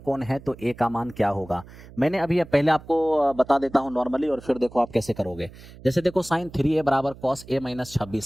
है तो a का मान क्या होगा। मैंने अभी पहले आपको बता देता हूं नॉर्मली और फिर देखो आप कैसे करोगे। जैसे देखो साइन 3a बराबर कॉस a माइनस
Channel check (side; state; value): right; noise; hum, 19 dB below the sound